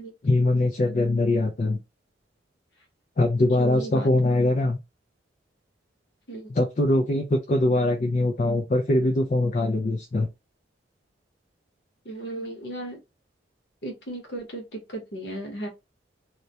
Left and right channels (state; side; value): normal; both; correlation 0.79